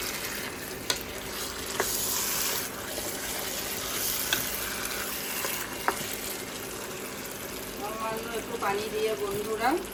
সামান্য একটু পানি দিয়ে বন্ধুরা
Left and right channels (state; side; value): identical; both; correlation 1.00